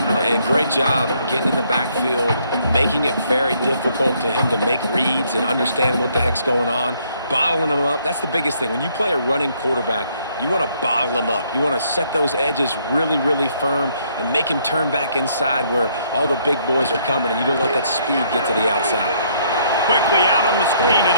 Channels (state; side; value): inverted; both; correlation -0.68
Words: And great job getting in the backfield, making it very difficult to him to make reads and understand what the heck's going on, bottling him up. That's the biggest thing. When you play a running quarterback, you want to bottle him up. You want to set those edges really, really firm and make him turn back inside where all the big boys are coming, and you don't let that speed get to the outside. Quickly out on the screen to